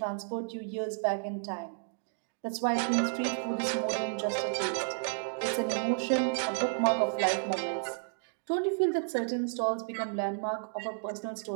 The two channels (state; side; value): silent; left; digital silence